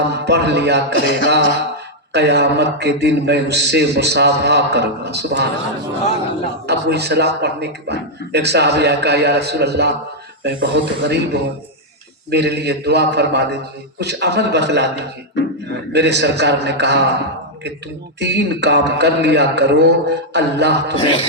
पढ़ लिया करेगा, कयामत के दिन मैं उससे मुसाफा करूंगा। सुभान अल्लाह। अब वही सलाम पढ़ने के बाद एक साहबी कहा, या रसूल अल्लाह, मैं बहुत गरीब हूँ, मेरे लिए दुआ फरमा दीजिए, कुछ अमल बतला दीजिए। मेरे सरकार ने कहा कि तुम 3 काम कर लिया करो, अल्लाह तुम्हें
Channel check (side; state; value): both; normal; correlation -0.03